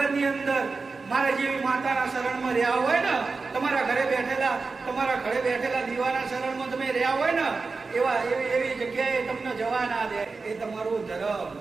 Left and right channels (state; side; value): quieter; left; 4.2 dB